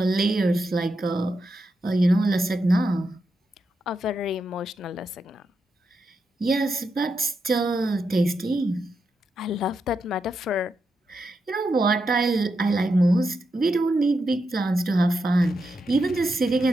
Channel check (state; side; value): normal; both; correlation 0.85